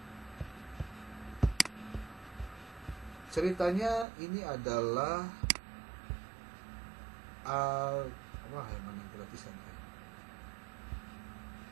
ceritanya ini adalah wah, yang mana gratisan ya?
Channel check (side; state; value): left; drops out; at 4.0 s